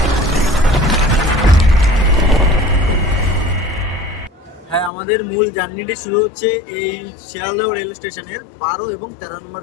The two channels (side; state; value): right; drops out; at 4.9 s